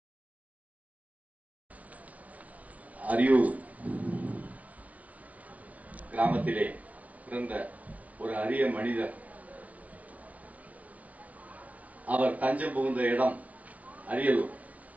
அரியூர் கிராமத்திலே பிறந்த ஒரு அரிய மனிதர். அவர் தஞ்சம் புகுந்த இடம் அரியலூர்.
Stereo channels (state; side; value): late; left; 0.069 ms